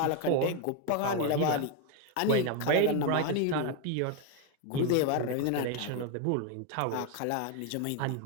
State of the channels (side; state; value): both; different; correlation 0.01